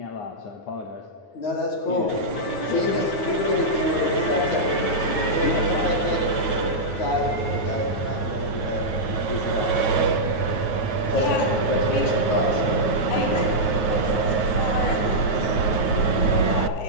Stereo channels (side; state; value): right; late; 9.6 ms